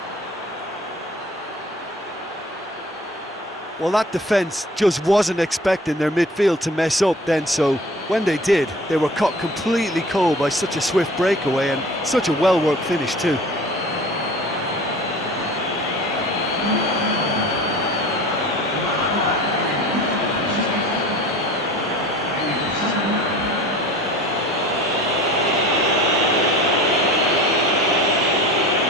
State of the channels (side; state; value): both; normal; correlation 0.43